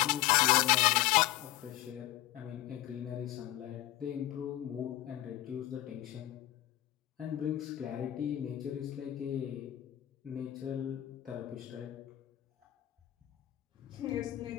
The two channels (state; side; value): quieter; right; 14.9 dB